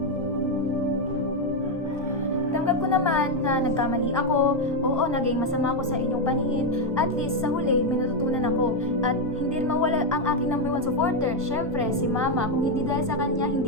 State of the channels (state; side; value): normal; both; correlation 0.04